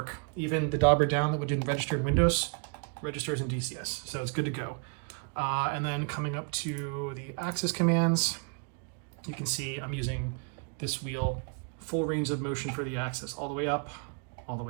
Even the dauber down that didn't register in Windows registers in DCS, so it's good to go. And then coming up to the axis commands, you can see I'm using this wheel, full range of motion for the axis, all the way up, all the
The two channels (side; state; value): left; quieter; 37.7 dB